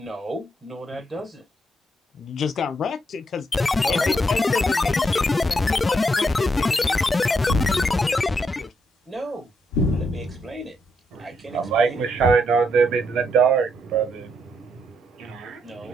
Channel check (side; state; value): both; normal; correlation 0.78